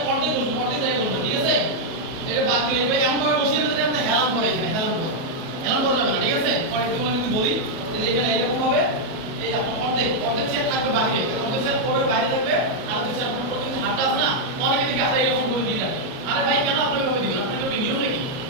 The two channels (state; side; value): late; left; 37 ms